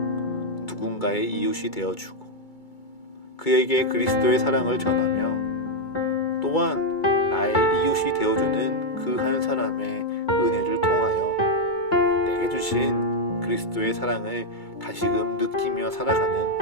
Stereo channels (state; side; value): late; right; 2.3 ms